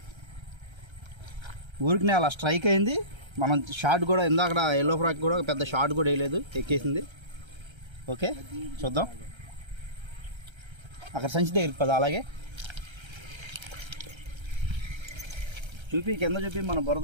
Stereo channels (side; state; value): left; late; 1.3 ms